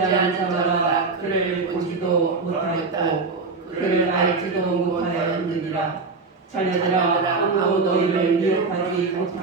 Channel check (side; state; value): left; quieter; 4.2 dB